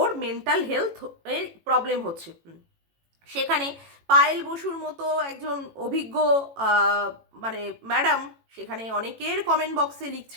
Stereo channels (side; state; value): left; late; 18 ms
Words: মেন্টাল হেলথ এর প্রবলেম হচ্ছে। সেখানে পায়েল বসুর মতো একজন অভিজ্ঞ মানে ম্যাডাম সেখানে অনেকের কমেন্ট বক্সে